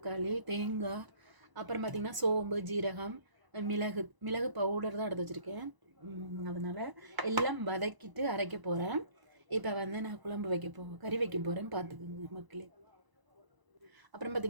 தேங்காய், அப்புறம் பார்த்திங்கன்னா சோம்பு, ஜீரகம், மிளகு பவுடர் தான் எடுத்து வச்சுருக்கேன். அதனால் எல்லாம் வதக்கிட்டு அரைக்க போகிறேன். இப்போ வந்து நான் குழம்பு கறி வைக்க போகிறேன்னு பார்த்துக்குங்க மக்களே. அப்புறம்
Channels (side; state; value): left; late; 1.0 ms